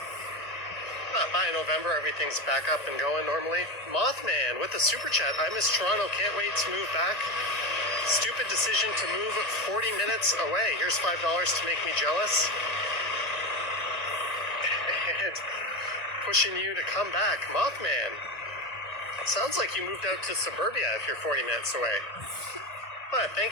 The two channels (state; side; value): late; right; 1.7 ms